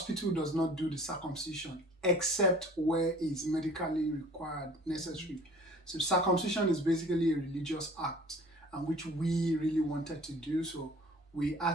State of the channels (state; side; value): normal; both; correlation 0.48